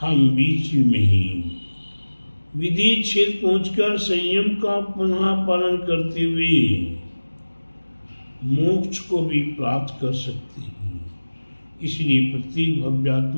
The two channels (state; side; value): inverted; both; correlation -1.00